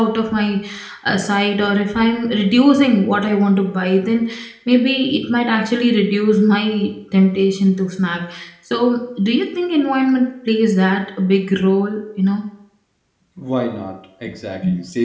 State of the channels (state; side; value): identical; both; correlation 1.00